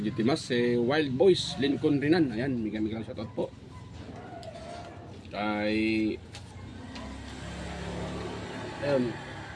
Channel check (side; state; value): both; identical; correlation 1.00